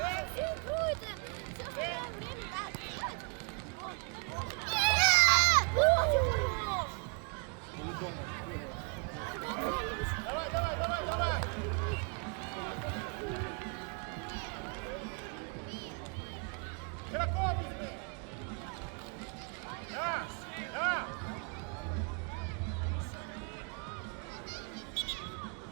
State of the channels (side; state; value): left; quieter; 38.8 dB